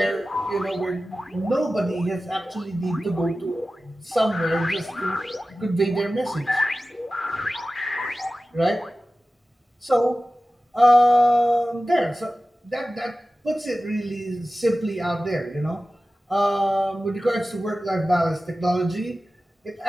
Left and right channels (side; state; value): both; normal; correlation 0.95